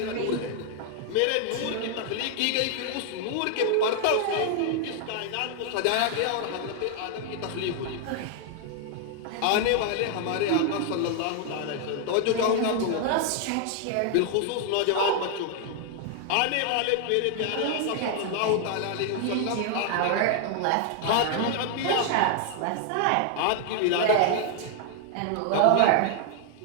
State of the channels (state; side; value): different; both; correlation 0.00